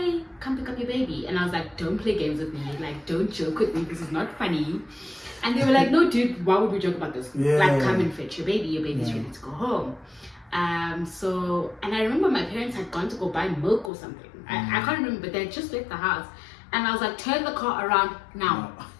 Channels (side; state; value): right; drops out; at 13.9 s